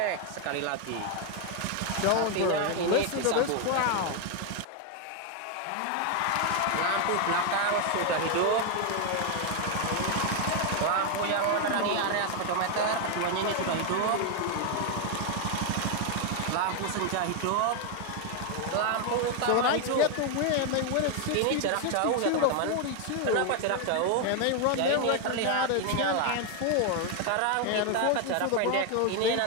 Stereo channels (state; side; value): different; both; correlation 0.01